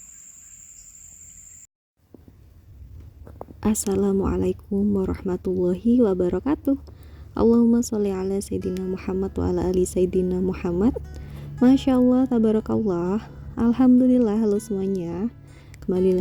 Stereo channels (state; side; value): identical; both; correlation 1.00